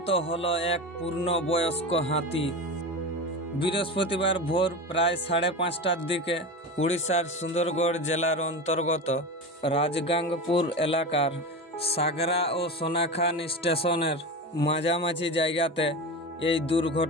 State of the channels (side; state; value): both; normal; correlation 0.25